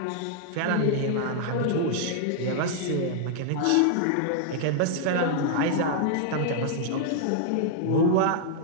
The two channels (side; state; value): both; different; correlation -0.01